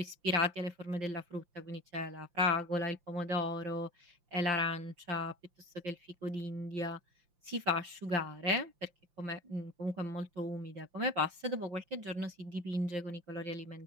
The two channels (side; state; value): left; late; 5.8 ms